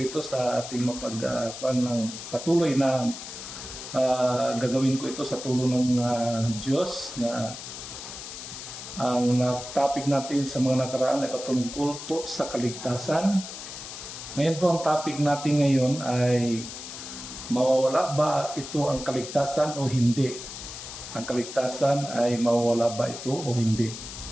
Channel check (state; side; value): noise; left; hiss, 10 dB below the sound